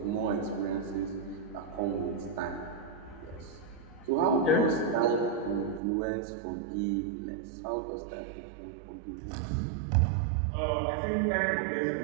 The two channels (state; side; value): drops out; left; at 5.8 s